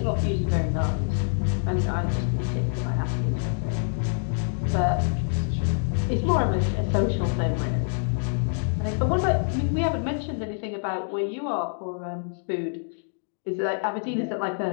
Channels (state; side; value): silent; right; digital silence